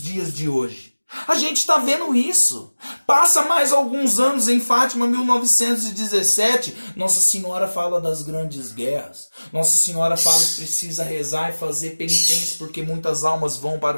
dias de hoje? A gente está vendo isso. Passa mais alguns anos, em Fátima, 1917, Nossa Senhora fala das grandes guerras. Nossa Senhora fala que precisa rezar e fazer penitência porque muitas almas vão para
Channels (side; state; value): both; inverted; correlation -1.00